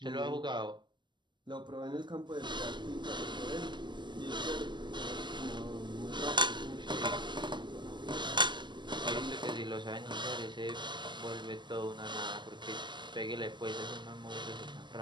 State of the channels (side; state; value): left; late; 0.22 ms